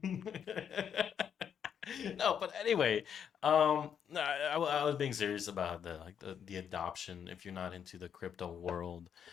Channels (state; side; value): quieter; right; 8.2 dB